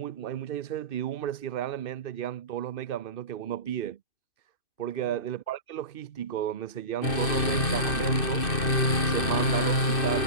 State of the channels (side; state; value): right; late; 2.6 ms